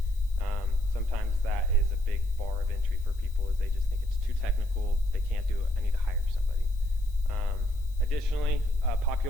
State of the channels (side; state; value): left; noise; hiss, 26 dB below the sound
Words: Sometimes that is a big bar of entry for people, is they just think it's too technical, they can't do it, I need to hire somebody. Additionally,